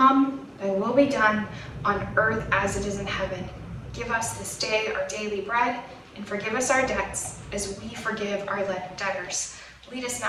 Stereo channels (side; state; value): both; identical; correlation 1.00